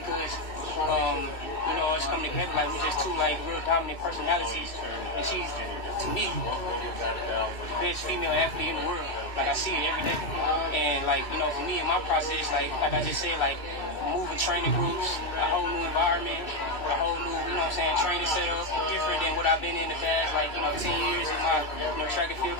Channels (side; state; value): right; late; 2.6 ms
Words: you know, it's coming together like we're just two like real dominant personalities. And she's, to me, the best female athlete in the world. Like I see it every day. And like, you know, for me in my process, like I just said, like moving training groups, a whole new environment, a whole new, you know what I'm saying, training setup, different than what I've been in the past, like, you know, 10 years of my, you know, track and field